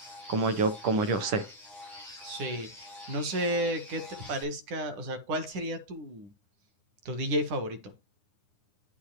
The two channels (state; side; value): late; left; 9.8 ms